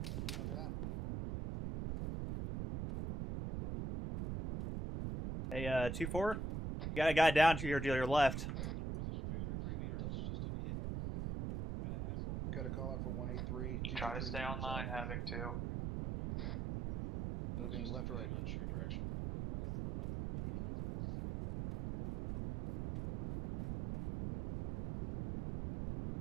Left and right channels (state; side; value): noise; right; rumble, 3 dB below the sound